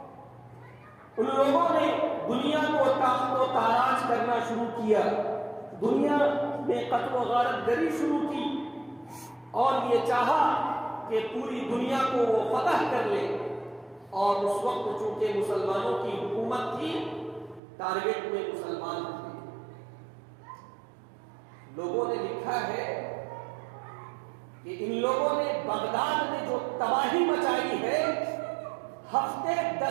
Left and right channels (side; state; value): left; drops out; at 17.6 s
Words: ان لوگوں نے دنیا کو تاخت و تاراج کرنا شروع کیا، دنیا میں قتل و غارت گری شروع کی، اور یہ چاہا کہ پوری دنیا کو وہ فتح کر لے۔ اور اس وقت چونکہ مسلمانوں کی حکومت تھی، ٹارگٹ میں مسلمان تھے۔ لوگوں نے لکھا ہے کہ ان لوگوں نے بغداد میں جو تباہی مچائی ہے، ہفتے